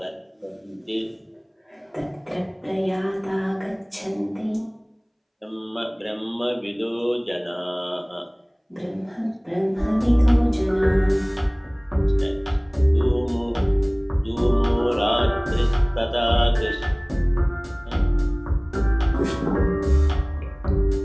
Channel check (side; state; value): both; identical; correlation 1.00